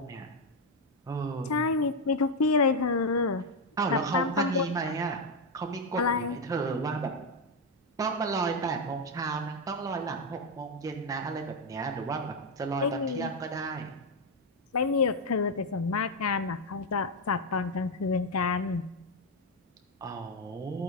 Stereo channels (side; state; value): both; normal; correlation 0.06